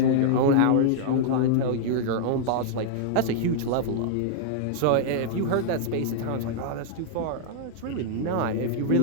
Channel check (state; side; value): different; both; correlation -0.01